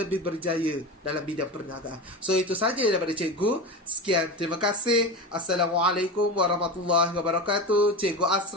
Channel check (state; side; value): normal; both; correlation 0.26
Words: berjaya dalam bidang perniagaan. So, itu saja daripada cikgu. Sekian, terima kasih. Assalamualaikum warahmatullahi wabarakatuh. Cikgu